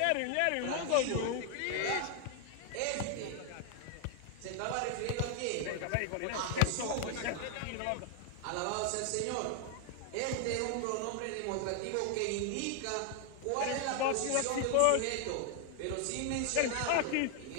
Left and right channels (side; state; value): both; different; correlation 0.00